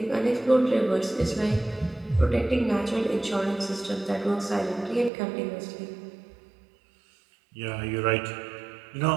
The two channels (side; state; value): left; drops out; at 5.1 s